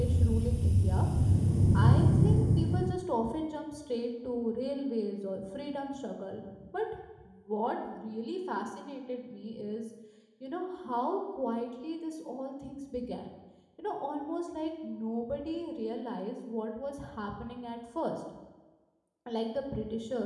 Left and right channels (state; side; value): identical; both; correlation 1.00